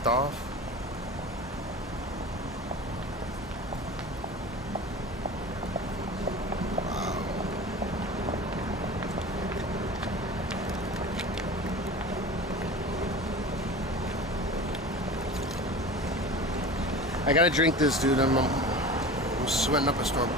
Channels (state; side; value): normal; both; correlation 0.35